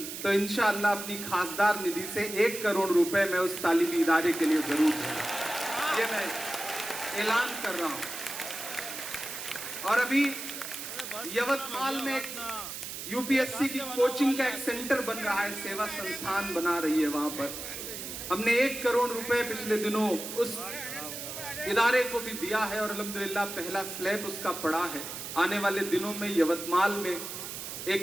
तो इंशाअल्लाह अपनी खासदार निधि से 1 करोड़ रुपए मैं उस तालीमी इदारे के लिए जरूर दूंगा। ये मैं ऐलान कर रहा हूँ। और अभी यवतमाल में यूपीएससी की कोचिंग का एक सेंटर बन रहा है, सेवा संस्थान बना रही है। वहां पर हमने 1 करोड़ रुपए पिछले दिनों उस इदारे को भी दिया है और अल्हम्दुलिल्लाह पहला स्लैब उसका पड़ा है। आने वाले दिनों में यवतमाल में एक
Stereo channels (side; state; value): right; noise; hiss, 8 dB below the sound